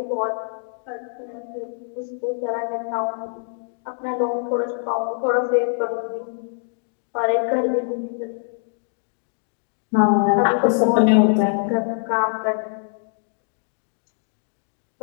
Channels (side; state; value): right; silent; digital silence